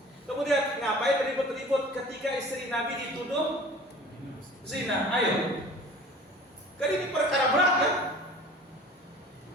Kemudian ngapain ribut-ribut ketika istri Nabi dituduh zina? Ayo. Kan ini perkara berat kan?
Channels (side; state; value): both; normal; correlation 0.44